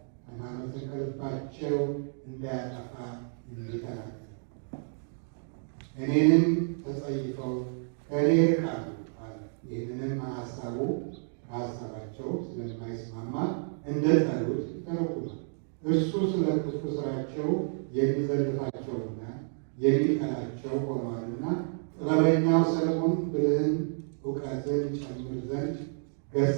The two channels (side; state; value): left; silent; digital silence